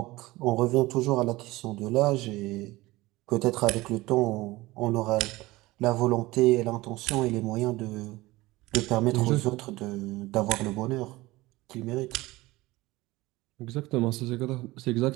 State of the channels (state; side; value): quieter; left; 19.7 dB